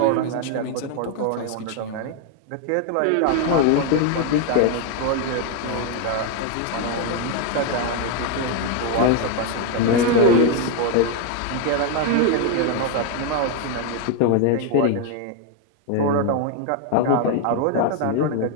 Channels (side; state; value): both; different; correlation 0.01